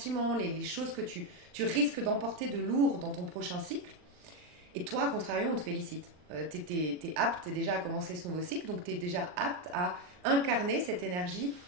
les choses que tu risques d'emporter de lourd dans ton prochain cycle. Et toi, à contrario, on te félicite. T'es apte, t'es déjà à commencer ce nouveau cycle, donc tu es déjà apte à incarner cette énergie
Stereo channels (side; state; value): left; late; 39 ms